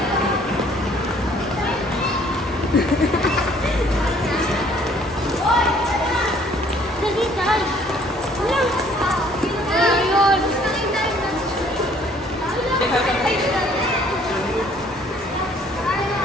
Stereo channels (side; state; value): both; normal; correlation 0.59